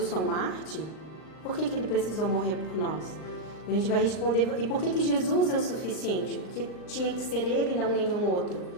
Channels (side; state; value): right; late; 39 ms